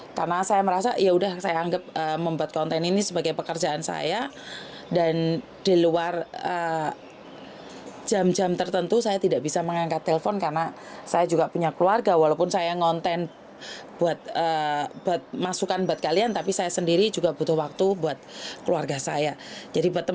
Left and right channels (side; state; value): both; identical; correlation 1.00